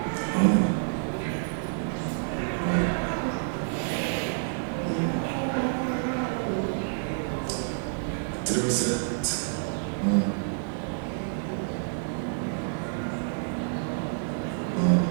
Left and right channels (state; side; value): silent; left; digital silence